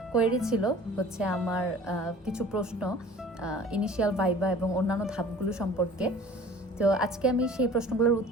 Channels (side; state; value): both; normal; correlation 0.46